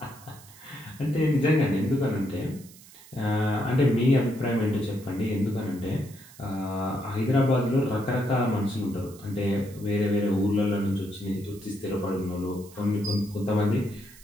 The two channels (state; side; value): noise; right; hiss, 21 dB below the sound